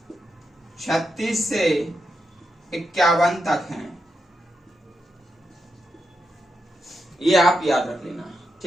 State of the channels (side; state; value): both; normal; correlation 0.85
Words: 36 से 51 तक हैं। ये आप याद रख लेना,